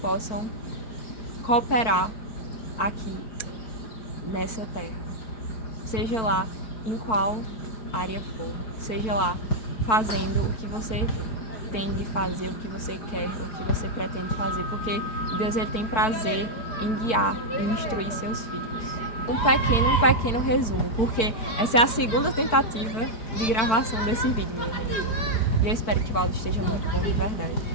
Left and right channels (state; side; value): late; right; 4.5 ms